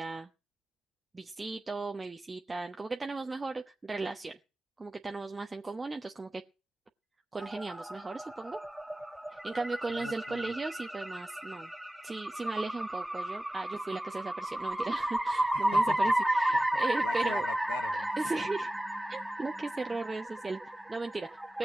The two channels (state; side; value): normal; both; correlation 0.96